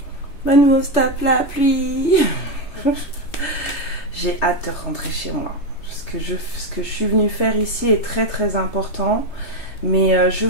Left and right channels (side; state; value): right; late; 3.3 ms